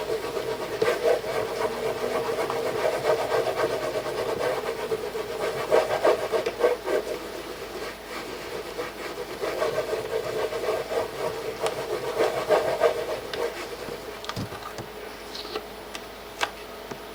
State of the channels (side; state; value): both; identical; correlation 1.00